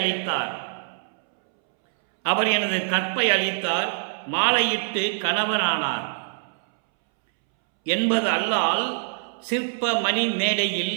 அளித்தார் மாலையிட்டு கணவரானார் என்பது அல்லால் சிற்ப மணி மேடையில்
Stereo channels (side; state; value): left; silent; 63 dB below the other